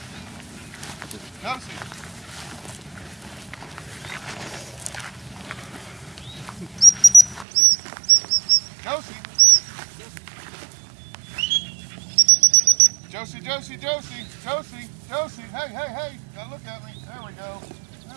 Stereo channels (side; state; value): left; drops out; at 7.5 s